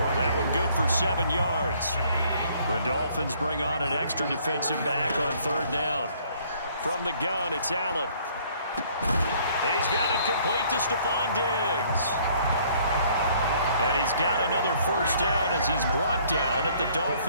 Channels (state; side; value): inverted; both; correlation -0.61